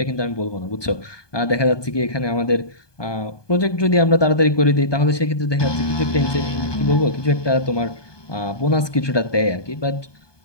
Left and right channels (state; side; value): late; right; 1.2 ms